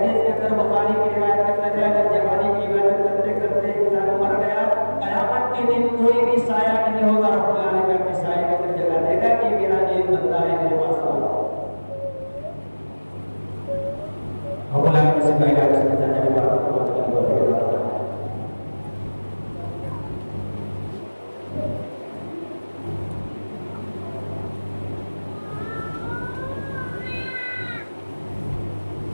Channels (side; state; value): both; inverted; correlation -1.00